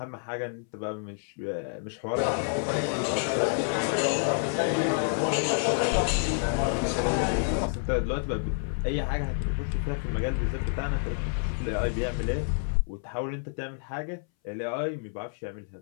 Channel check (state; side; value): silent; right; 59 dB below the other